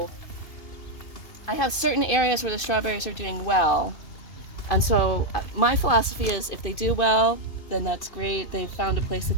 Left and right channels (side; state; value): right; late; 2.5 ms